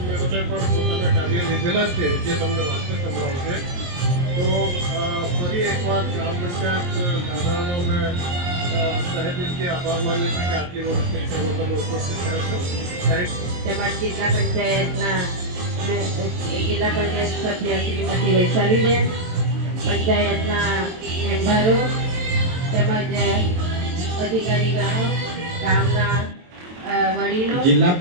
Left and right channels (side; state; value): left; late; 23 ms